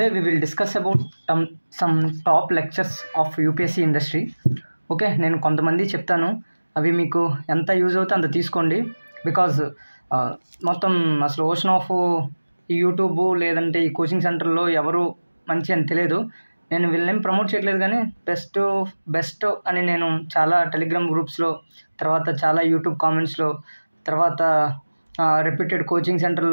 we will discuss about some top lectures of UPSC industry. Okay, నేను కొంతమంది చెప్తాను, అవి మీకు ఎంత యూజ్ అవుతే అంత తీసుకోండి. బికాజ్ మొత్తం అసలు ఓషన్ ఆఫ్ ఈ యూట్యూబ్ లేదంటే ఈ కోచింగ్ సెంటర్లో ఎవరు మంచి అని తెలియదు. నేను వీళ్ళని ప్రమోట్ చేయట్లేదు, కానీ బెస్ట్ అని నేను చాలా టెలిగ్రామ్ గ్రూప్స్లో, తర్వాత చాలా యూట్యూబ్ కామెంట్స్లో, తర్వాత రెప్యూటెడ్ కోచింగ్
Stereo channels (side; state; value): both; inverted; correlation -1.00